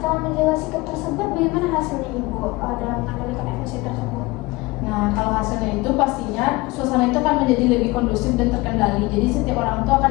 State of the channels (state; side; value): quieter; right; 22.3 dB